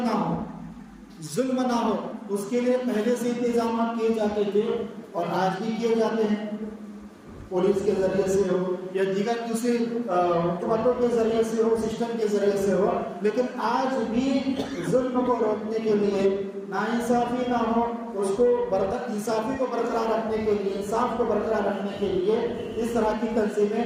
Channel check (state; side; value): identical; both; correlation 1.00